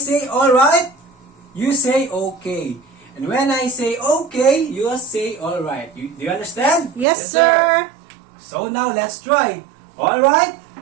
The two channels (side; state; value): left; drops out; at 7.1 s